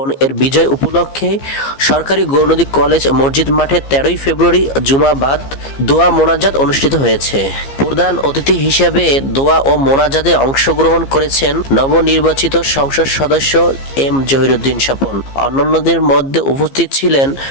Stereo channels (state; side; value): late; right; 15 ms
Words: এর বিজয় উপলক্ষে সরকারি গৌরনদী কলেজ মসজিদ মাঠে 13ই ফেব্রুয়ারি জুমাবাদ দোয়া মোনাজাত অনুষ্ঠিত হয়েছে। প্রধান অতিথি হিসেবে দোয়া ও মোনাজাতে অংশগ্রহণ করেছেন নবনির্বাচিত সংসদ সদস্য এম জহিরুদ্দিন স্বপন। অন্যান্যদের মধ্যে উপস্থিত ছিলেন